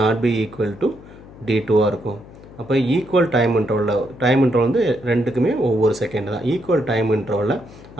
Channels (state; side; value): noise; left; hum, 20 dB below the sound